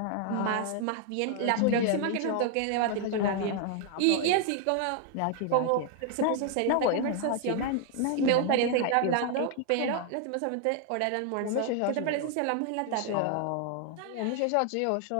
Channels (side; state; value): both; different; correlation 0.00